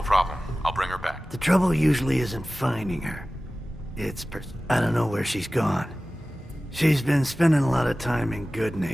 problem. I'll bring her back. The trouble usually isn't finding her. It's I don't know where she's gone. She's been spending a lot of time in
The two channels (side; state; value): both; normal; correlation 0.97